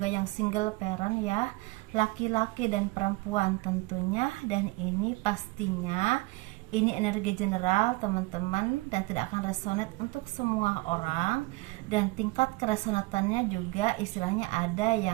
yang single parent ya, laki-laki dan perempuan tentunya. Dan ini pastinya ini energi general teman-teman dan tidak akan resonate untuk semua orang, dan tingkat keresonatannya juga istilahnya ada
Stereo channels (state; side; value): quieter; left; 22.9 dB